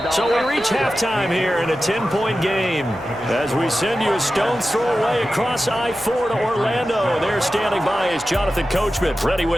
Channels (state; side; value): noise; right; hum, 23 dB below the sound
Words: So we reach halftime here in a 10-point game as we send you a stone's throw away across I-4 to Orlando. There standing by is Jonathan Coachman, ready